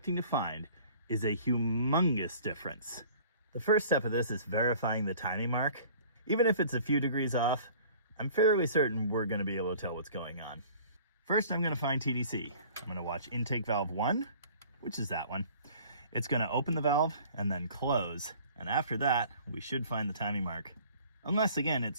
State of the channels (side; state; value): both; inverted; correlation -0.49